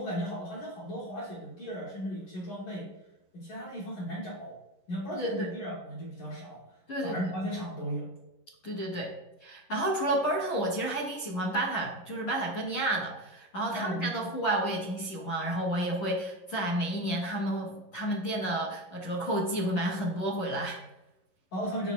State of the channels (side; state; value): right; late; 11 ms